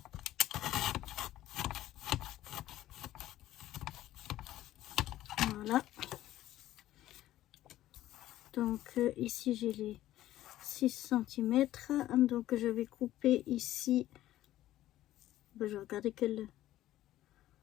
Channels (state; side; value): quieter; right; 14.2 dB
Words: Voilà. Donc ici j'ai les 6 cm. Donc je vais couper ici. Ben, je vais regarder quel...